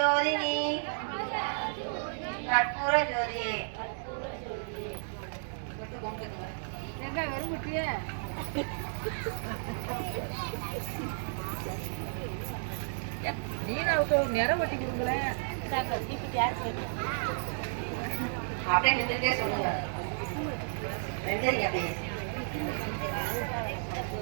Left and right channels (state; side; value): silent; left; digital silence